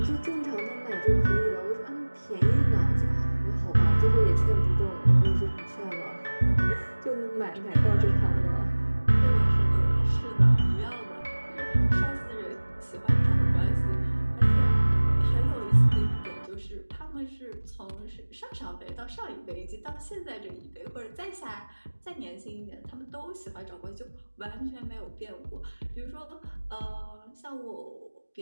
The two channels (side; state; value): both; inverted; correlation -1.00